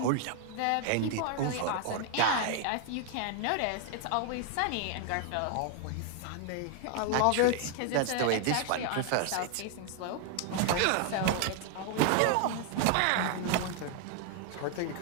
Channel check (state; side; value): different; both; correlation 0.00